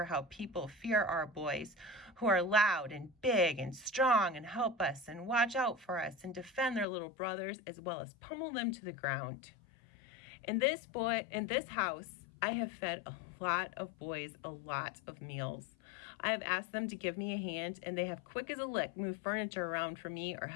how people fear our boys, who are loud and big and strong and help us and watch out for us and defend their little brothers as well as pummel them to the ground. In this house, I have fed a lot of boys a lot of meals. I have asked them to give me a hand, and they have quick as a lick moved furniture around for me or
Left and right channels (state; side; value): drops out; right; at 6.9 s